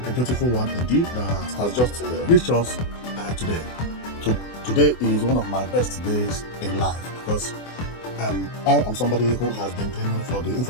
a beautiful one indeed that has just reached us today. So today is one of my best days in life because I am somebody who has been dreaming for the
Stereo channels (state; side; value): late; right; 24 ms